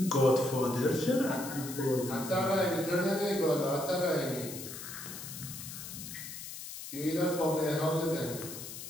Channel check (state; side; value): noise; left; hiss, 10 dB below the sound